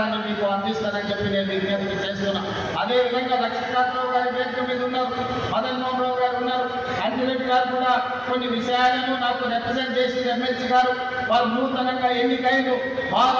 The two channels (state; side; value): identical; both; correlation 1.00